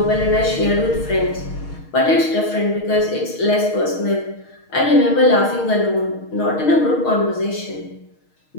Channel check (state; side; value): late; right; 6.4 ms